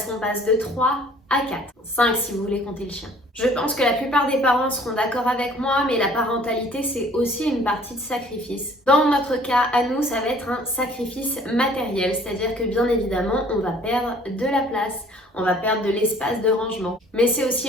qu'on passe de 3 à 4, 5 si vous voulez compter le chien. Je pense que la plupart des parents seront d'accord avec moi, mais la parentalité, c'est aussi une partie de sacrifice. Dans notre cas, à nous, ça va être un sacrifice matériel, c'est-à-dire que bien évidemment, on va perdre de la place, on va perdre de l'espace de rangement. Mais c'est aussi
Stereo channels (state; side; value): normal; both; correlation 0.54